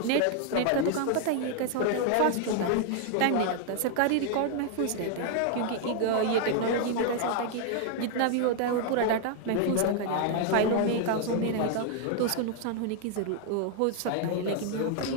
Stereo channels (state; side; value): different; both; correlation 0.00